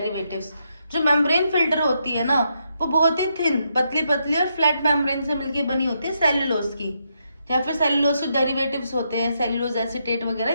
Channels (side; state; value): both; inverted; correlation -0.80